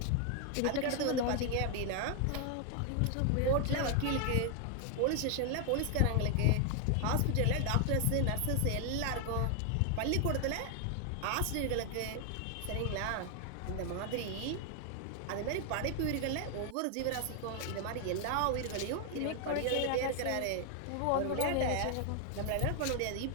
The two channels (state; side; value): different; both; correlation 0.00